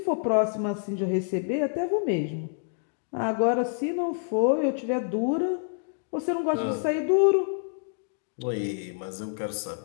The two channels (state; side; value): silent; right; digital silence